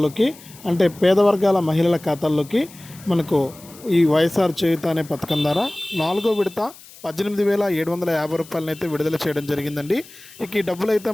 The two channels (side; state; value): left; noise; hiss, 21 dB below the sound